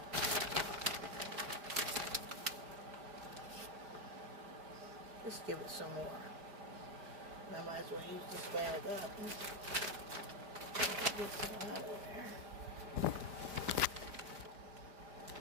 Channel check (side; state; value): left; late; 5.0 ms